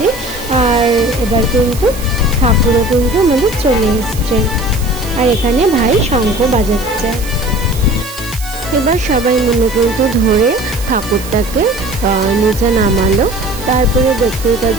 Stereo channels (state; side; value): noise; right; hiss, 14 dB below the sound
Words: আর এবার কিন্তু ঠাকুরও কিন্তু আমাদের চলে এসছে। আর এখানে ভাই শঙ্খ বাজাচ্ছে। এবার সবাই মিলে কিন্তু ধরে ঠাকুরটাকে নিচে নামালো। তারপরে দেখতেই